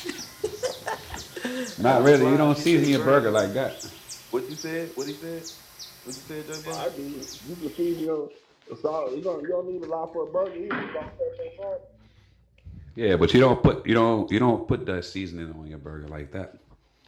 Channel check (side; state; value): both; identical; correlation 1.00